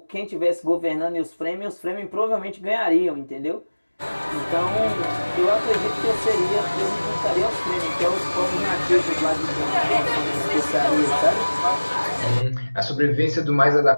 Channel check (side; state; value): both; inverted; correlation -1.00